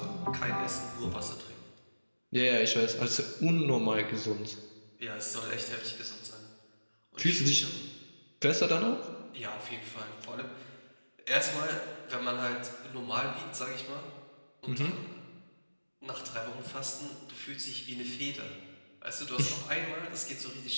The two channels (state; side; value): inverted; both; correlation -1.00